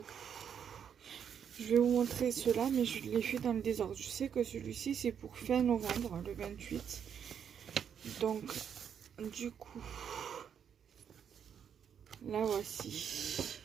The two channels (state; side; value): quieter; left; 8.0 dB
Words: je vais vous montrer cela, mais je les fais dans le désordre. Je sais que celui-ci, c'est pour fin novembre, le 28. Donc, du coup, là voici.